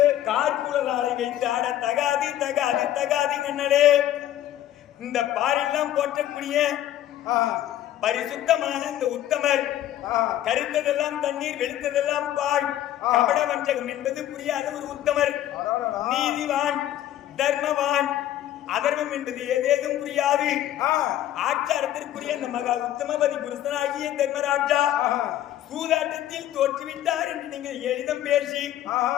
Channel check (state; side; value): quieter; right; 12.6 dB